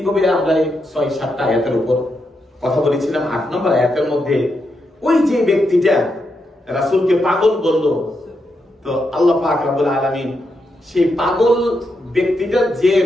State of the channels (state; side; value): normal; both; correlation 0.83